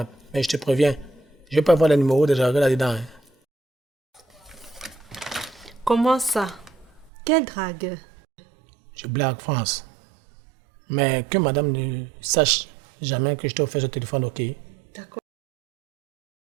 Mais je te préviens, je ne vais pas avoir le numéro de dragueur là-dedans. Hein. Comment ça? Quel dragueur? Je blague, France. Mais que madame ne sache jamais que je t'ai offert ce téléphone, ok? D'accord.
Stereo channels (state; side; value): drops out; left; at 7.1 s